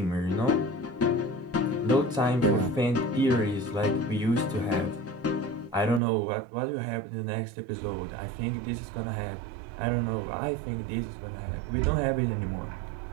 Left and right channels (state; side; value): drops out; left; at 6.0 s